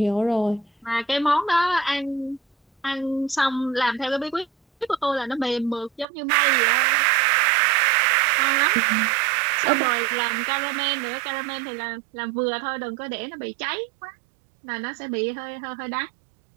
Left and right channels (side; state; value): left; drops out; at 6.1 s